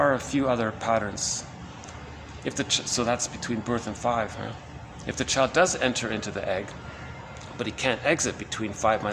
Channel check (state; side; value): identical; both; correlation 1.00